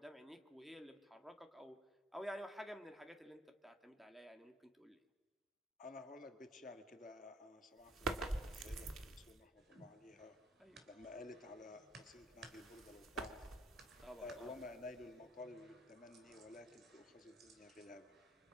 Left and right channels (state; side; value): normal; both; correlation 0.63